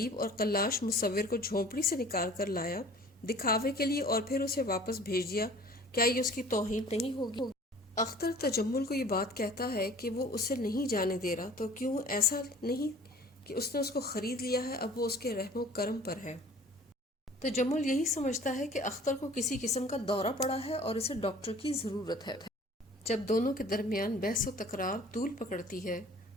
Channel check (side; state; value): both; normal; correlation 0.49